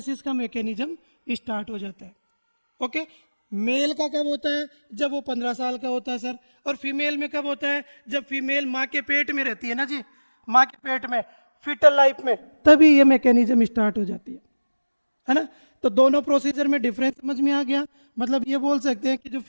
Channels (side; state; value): both; inverted; correlation -1.00